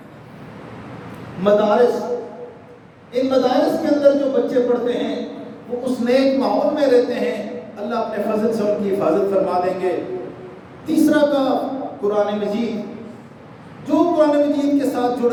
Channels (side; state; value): both; identical; correlation 1.00